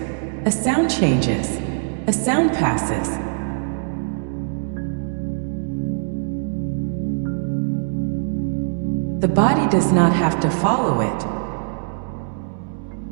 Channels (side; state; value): left; silent; 64 dB below the other